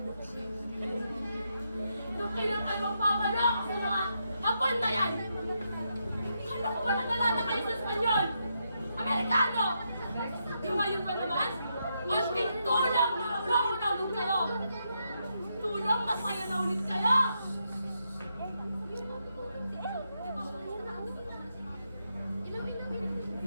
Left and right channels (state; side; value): inverted; both; correlation -0.81